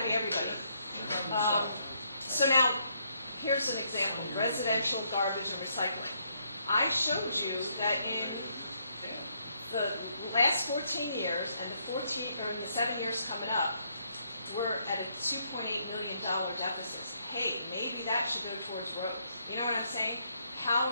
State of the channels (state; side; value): inverted; both; correlation -0.73